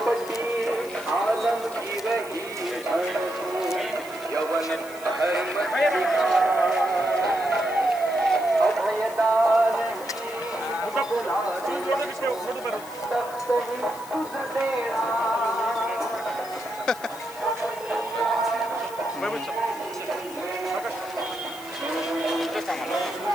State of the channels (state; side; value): noise; left; hiss, 18 dB below the sound